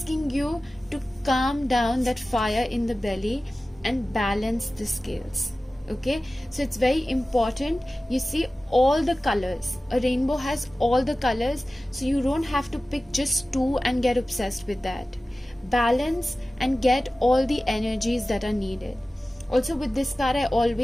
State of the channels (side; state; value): both; normal; correlation 0.96